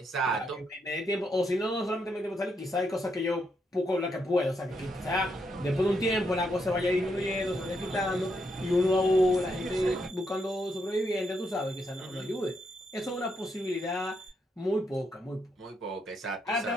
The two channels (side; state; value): both; normal; correlation 0.79